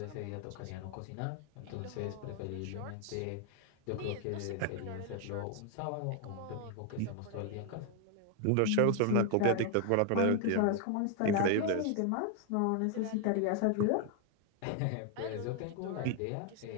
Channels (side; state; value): both; different; correlation 0.00